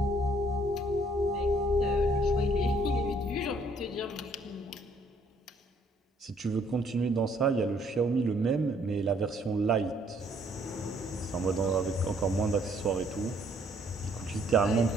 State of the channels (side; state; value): both; normal; correlation 0.65